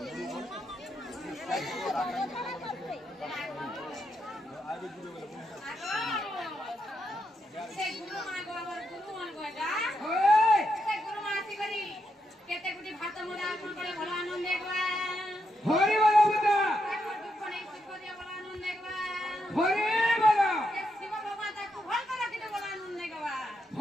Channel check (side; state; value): both; normal; correlation 0.82